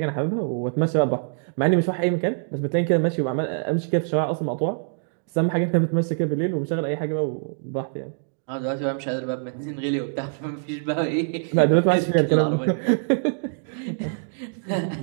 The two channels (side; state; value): left; silent; digital silence